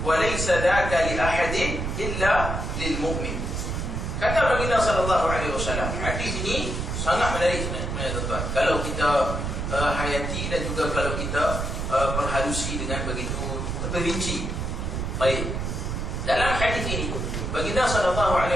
wa laysa dhaka li ahadin illa lil mu'min." Kata baginda sallallahu alaihi wasallam. Hadis ini sangat menarik sebenarnya tuan-tuan. Kalau kita hayati dan juga kalau kita perhalusi dengan begitu terperinci. Baik. Dalam hadis ini baginda sallallahu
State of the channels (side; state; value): right; noise; rumble, 3 dB below the sound